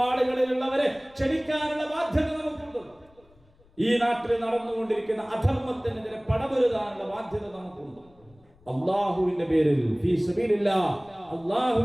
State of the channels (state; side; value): noise; left; rumble, 29 dB below the sound